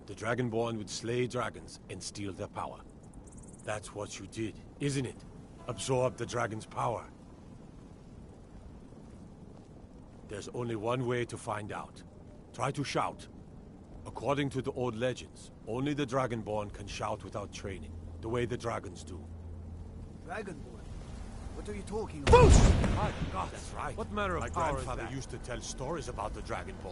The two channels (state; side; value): identical; both; correlation 1.00